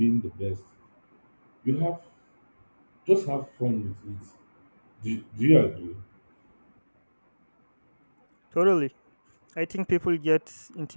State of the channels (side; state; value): both; inverted; correlation -1.00